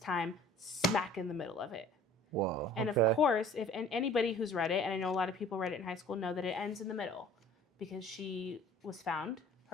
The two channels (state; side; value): normal; both; correlation 0.49